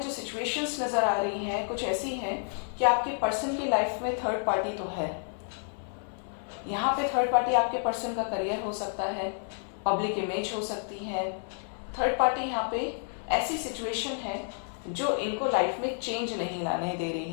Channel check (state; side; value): silent; right; 58 dB below the other